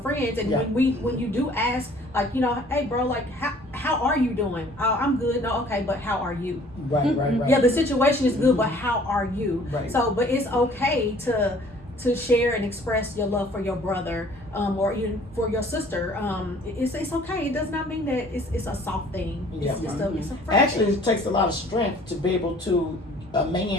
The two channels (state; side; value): normal; both; correlation 0.54